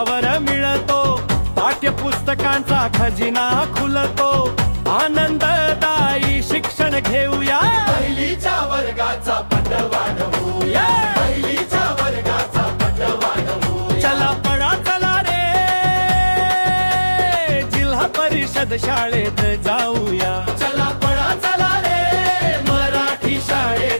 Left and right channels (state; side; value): inverted; both; correlation -1.00